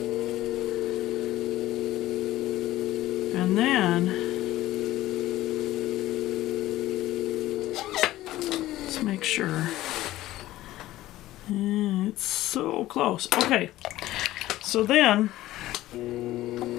And then... Let's make sure. It's so close. Okay, so then...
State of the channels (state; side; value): quieter; right; 15.6 dB